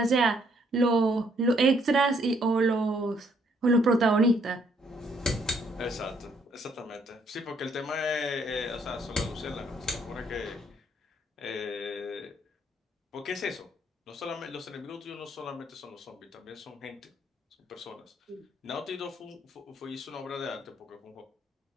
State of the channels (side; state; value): both; normal; correlation 0.68